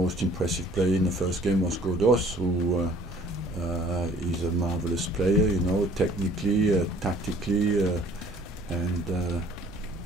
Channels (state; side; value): normal; both; correlation 0.55